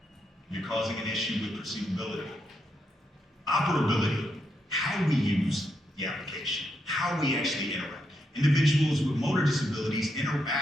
You're causing an issue with perceivability. Operability, how we use the application, how we actually interact. Individuals with motor disabilities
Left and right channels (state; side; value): normal; both; correlation 0.81